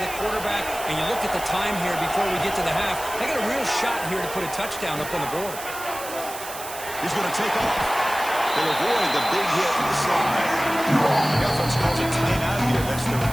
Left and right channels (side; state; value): right; noise; hiss, 11 dB below the sound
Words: quarterback, and you look at the time here before we get to the half. They got a real shot here to put a touchdown up on the board. He's going to take off. They'll avoid the big hit in the slide. The offense calls a timeout here. That's their